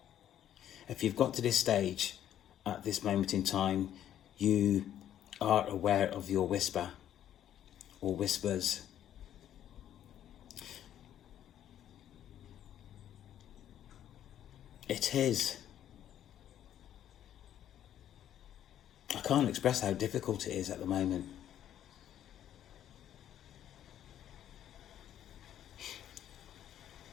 If you've got to this stage at this moment in time, you are aware of your whisper or whispers. It is. I can't express how difficult it is at the moment.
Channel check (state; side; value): quieter; right; 10.9 dB